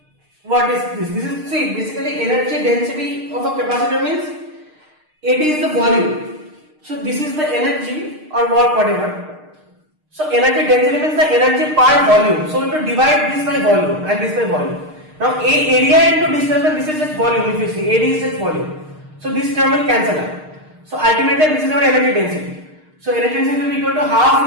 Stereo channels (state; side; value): late; left; 6.5 ms